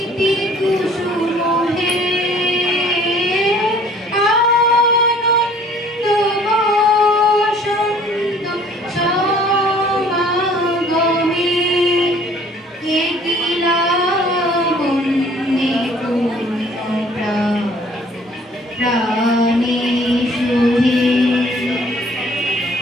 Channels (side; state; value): both; normal; correlation 0.55